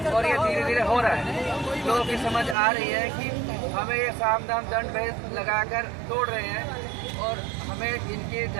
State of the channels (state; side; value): drops out; left; at 2.6 s